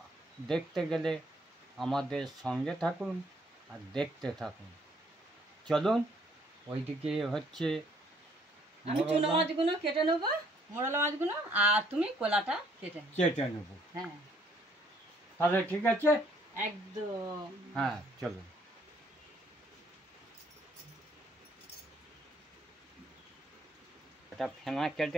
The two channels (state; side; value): normal; both; correlation 0.65